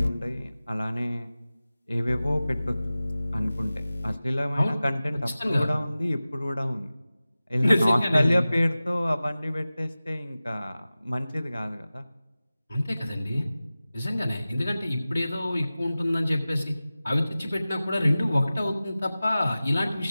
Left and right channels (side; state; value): both; inverted; correlation -0.96